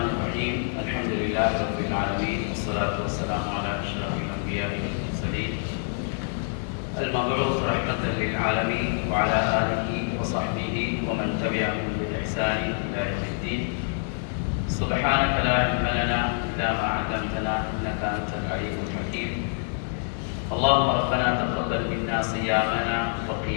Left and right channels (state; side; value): silent; right; 61 dB below the other